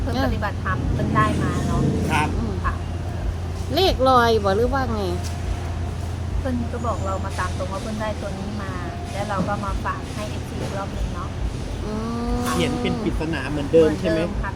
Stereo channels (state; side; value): identical; both; correlation 1.00